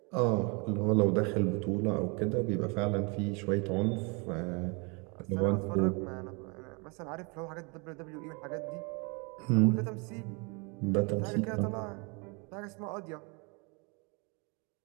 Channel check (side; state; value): left; quieter; 31.8 dB